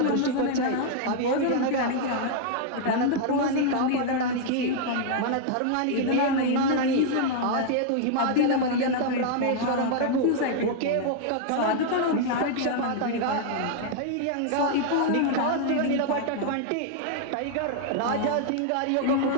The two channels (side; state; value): both; different; correlation -0.01